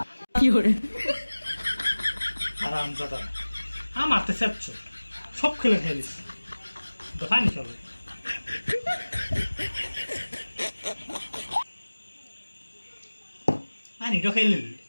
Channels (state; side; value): inverted; both; correlation -1.00